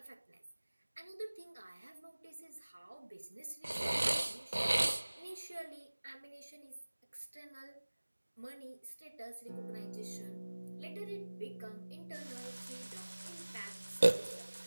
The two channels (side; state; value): both; inverted; correlation -1.00